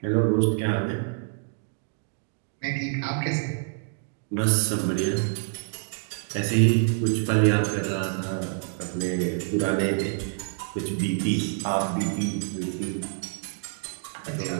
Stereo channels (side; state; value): left; silent; 60 dB below the other